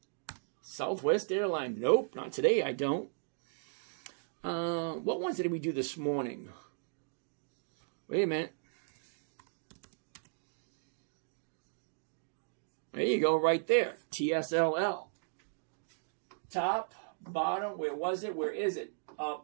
Southwest Airlines. Nope, not today, I don't. What ones did we do this morning? Wait a minute. There you go, right there. TSLL. Top, bottom, where was it? Where is it? Up,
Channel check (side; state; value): left; silent; digital silence